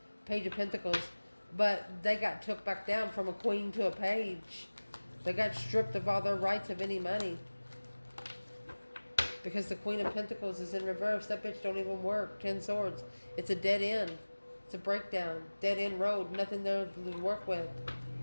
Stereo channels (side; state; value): both; inverted; correlation -1.00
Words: Page of Pentacles. But they got took back down from a queen to a page. They got stripped of all their rights of any money. Because the Queen of Pentacles is in reverse. That bitch don't even work. 10 Swords. It's a dead end. It's a breakdown. Dead end road. Nothing there to work with.